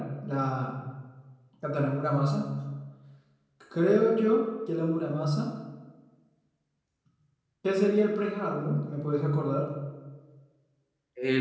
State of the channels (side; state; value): both; identical; correlation 1.00